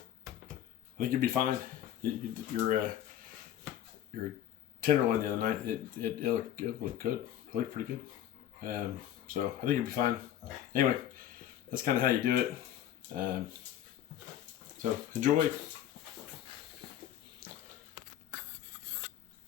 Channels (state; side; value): quieter; right; 11.4 dB